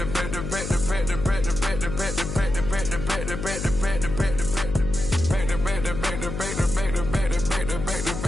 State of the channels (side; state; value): left; noise; hum, 6 dB below the sound